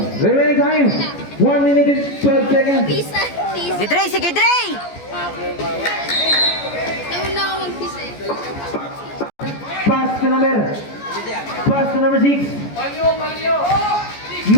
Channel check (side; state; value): right; late; 14 ms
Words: Remaining time, 1 minute and 12 seconds. Pisa. Pisa. Si Dre, sige Dre! Nauna ako mag-pisa eh. Pass to number 6.